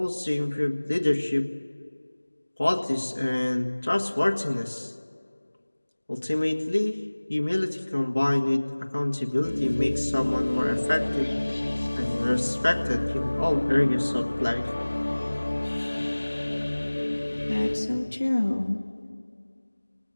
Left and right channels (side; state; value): both; inverted; correlation -1.00